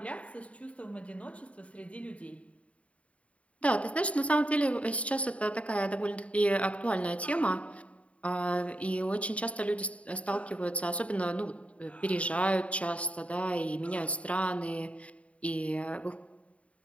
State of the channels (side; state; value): right; late; 0.065 ms